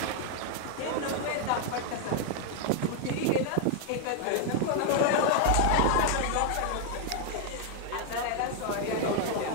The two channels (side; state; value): both; different; correlation 0.00